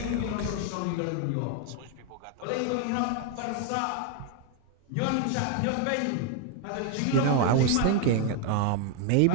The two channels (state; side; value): different; both; correlation 0.01